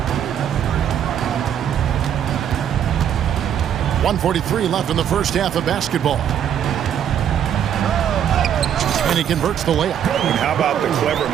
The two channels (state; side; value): quieter; left; 9.3 dB